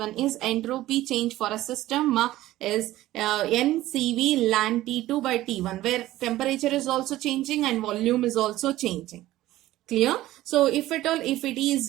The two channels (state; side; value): quieter; left; 15.6 dB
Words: is entropy change for a system is NCV LAN T2 by T1, where temperature is also changing and volume is also changing. Clear? So if at all, if it